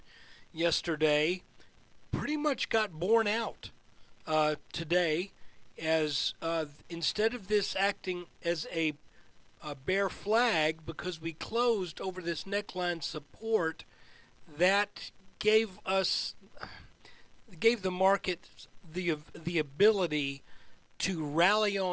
yesterday pretty much got borne out today, as instead of this acting as a bear flag because we closed over this neckline support, that gave the market the ability to rally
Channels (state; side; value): identical; both; correlation 1.00